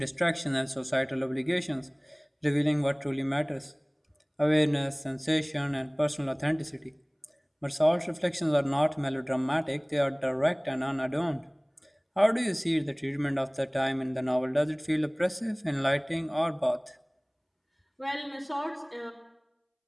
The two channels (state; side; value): identical; both; correlation 1.00